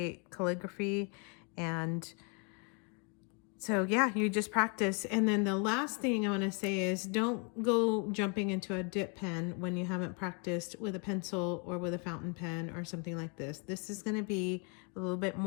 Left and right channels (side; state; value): right; quieter; 36.6 dB